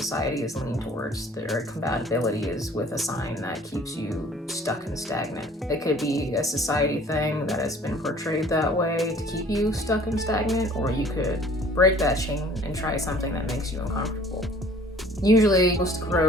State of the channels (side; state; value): both; normal; correlation 0.52